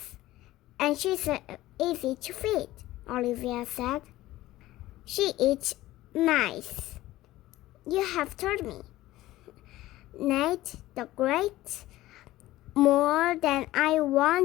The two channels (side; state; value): right; quieter; 16.3 dB